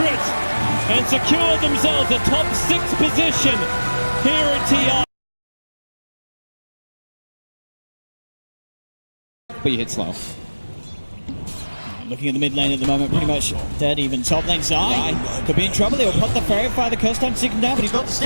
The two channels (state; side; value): inverted; both; correlation -1.00